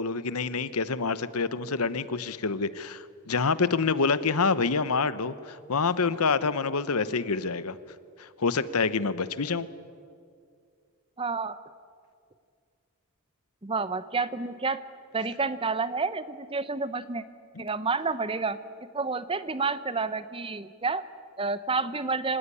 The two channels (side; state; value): both; normal; correlation -0.15